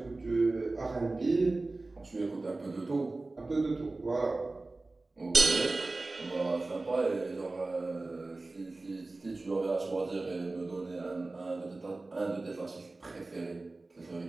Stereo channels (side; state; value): left; quieter; 3.2 dB